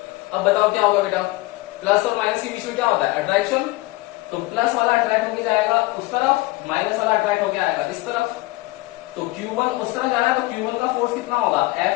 अब बताओ क्या होगा बेटा, प्लस और माइनस के बीच में क्या होता है, अट्रैक्शन, तो प्लस वाला अट्रैक्ट होके जाएगा उस तरफ, माइनस वाला अट्रैक्ट होके आएगा इस तरफ, तो Q1 उस तरफ जा रहा है, तो Q1 का फोर्स कितना होगा,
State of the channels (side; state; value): right; quieter; 20.9 dB